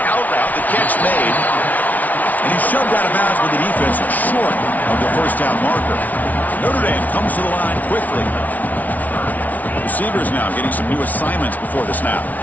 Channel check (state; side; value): late; right; 0.075 ms